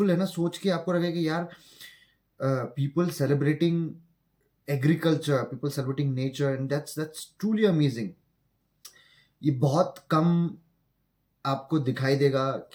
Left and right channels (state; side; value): identical; both; correlation 1.00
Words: है ना, सोच के आपको लगेगा कि यार people celebrating agriculture, people celebrating nature, and that's truly amazing. ये बहुत कम आपको दिखाई देगा